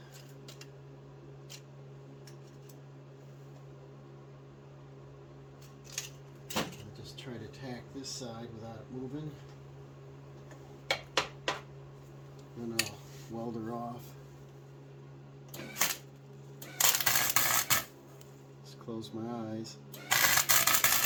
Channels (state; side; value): identical; both; correlation 1.00